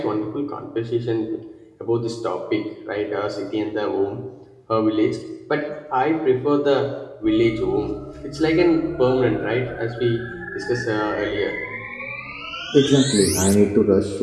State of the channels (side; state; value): both; identical; correlation 1.00